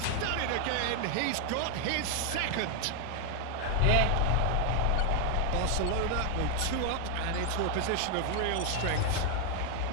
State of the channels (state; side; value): different; both; correlation 0.00